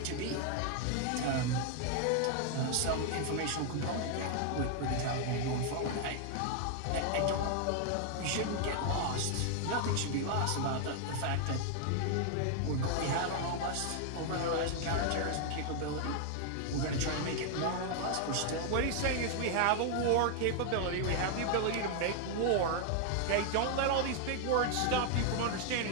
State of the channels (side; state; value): both; different; correlation 0.00